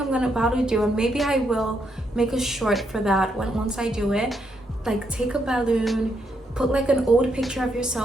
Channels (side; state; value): both; normal; correlation 0.78